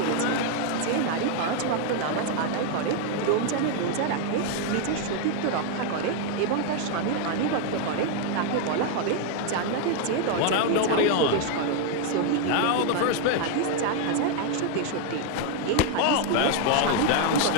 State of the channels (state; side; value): different; both; correlation 0.00